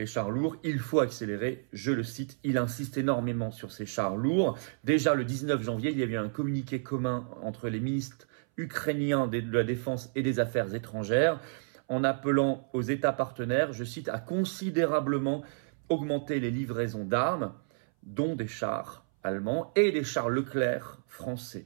chars lourds, il faut accélérer ». Je le cite, il insiste énormément sur ces chars lourds. Déjà le 19 janvier, il y a eu un communiqué commun entre les ministres ukrainiens de la Défense et des Affaires étrangères, en appelant aux États partenaires, je cite, à considérablement augmenter les livraisons d'armes, dont des chars allemands et des chars Leclerc français.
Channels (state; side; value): silent; left; 57 dB below the other